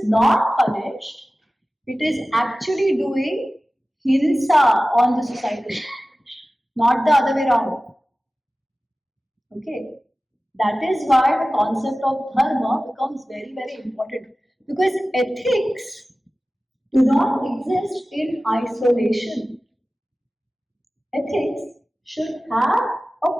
not punished, it is actually doing hinsa on the society, not the other way around. Okay, that is why the concept of dharma becomes very, very important, because ethics do not exist in isolation. Ethics should have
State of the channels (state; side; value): normal; both; correlation 0.96